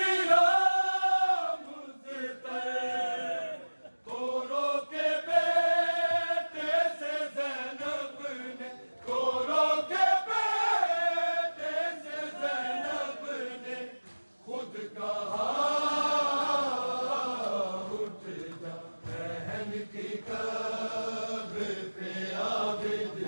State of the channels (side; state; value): both; inverted; correlation -1.00